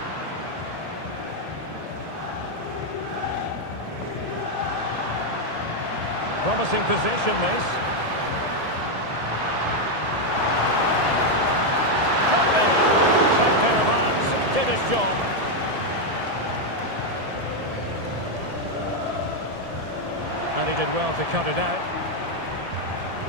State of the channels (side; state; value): left; late; 1.7 ms